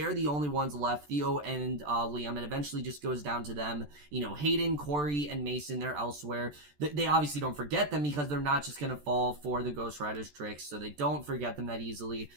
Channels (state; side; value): late; left; 14 ms